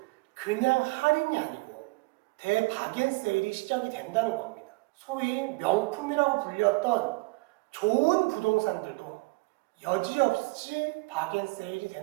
그냥 할인이 아니고 대바겐세일이 시작이 된다는 겁니다. 소위 명품이라고 불렸던 좋은 부동산들도 여지없이 바겐세일이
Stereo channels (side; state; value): left; quieter; 26.0 dB